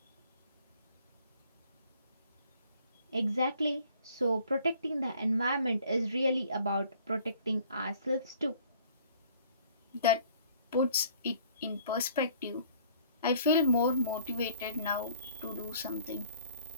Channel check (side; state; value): both; inverted; correlation -0.56